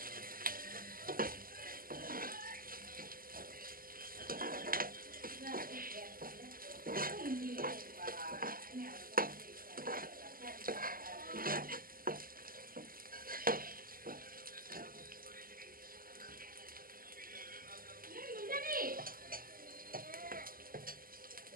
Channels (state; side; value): late; left; 0.42 ms